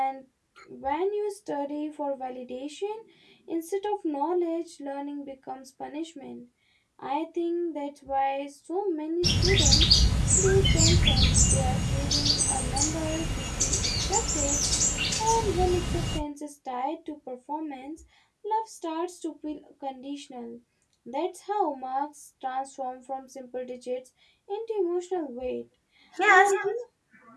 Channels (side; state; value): both; identical; correlation 1.00